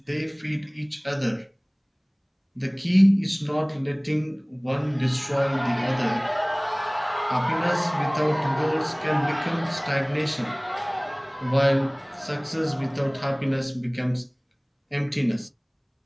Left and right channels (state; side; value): identical; both; correlation 1.00